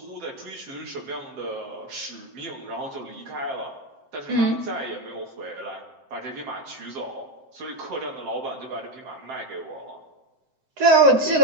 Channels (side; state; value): left; late; 7.7 ms